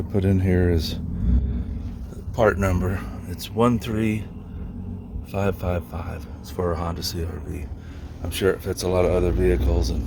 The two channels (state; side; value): identical; both; correlation 1.00